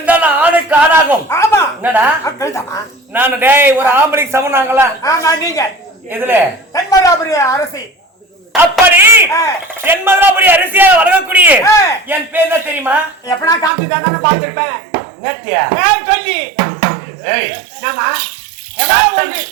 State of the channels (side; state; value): left; drops out; at 13.7 s